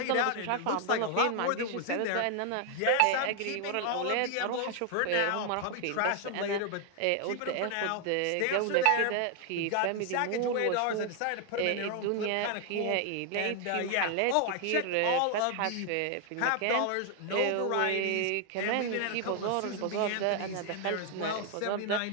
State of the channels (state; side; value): different; both; correlation 0.00